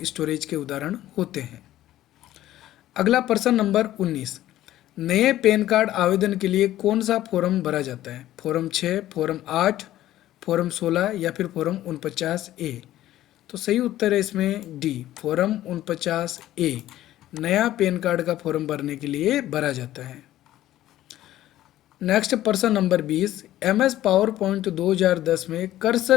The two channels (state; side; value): quieter; right; 13.9 dB